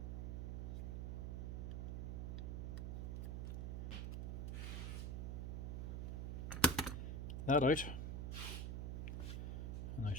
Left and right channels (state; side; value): noise; right; hum, 1 dB below the sound